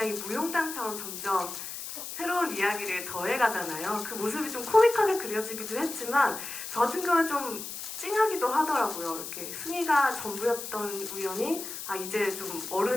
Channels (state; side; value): noise; left; hiss, 8 dB below the sound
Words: 무용담처럼 점점 새로운 이야기를 더해가잖아요. 그 모습이 좀 코믹하게 그려지기도 했지만 저 같은 경우는 좀 찡하기도 하더라고요. 이렇게 승희가 전부였던 우연이 이제 좀